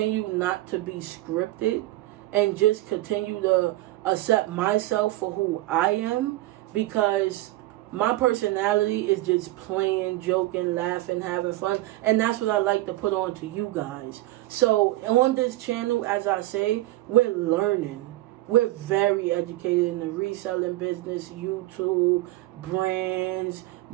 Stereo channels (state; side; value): quieter; left; 17.3 dB